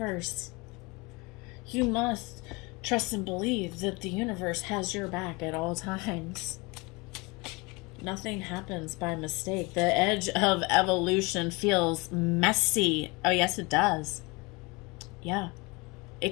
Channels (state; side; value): quieter; right; 26.1 dB